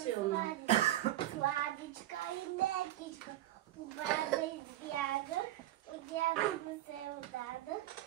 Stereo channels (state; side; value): quieter; left; 14.2 dB